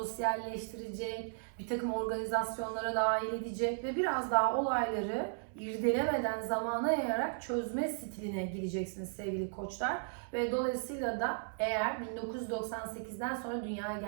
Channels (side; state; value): left; silent; 54 dB below the other